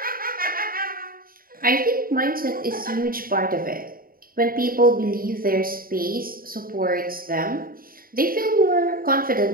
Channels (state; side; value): late; left; 0.42 ms